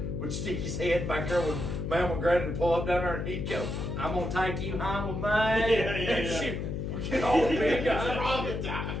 would stick his head back there when Mom and Granny would pull up down there, and he'd go, I'm gonna take you home with me. And she would get all big eyes.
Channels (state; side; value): noise; left; hum, 3 dB below the sound